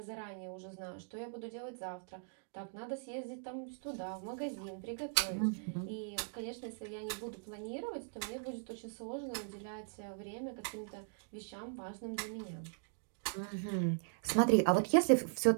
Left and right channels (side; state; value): left; silent; digital silence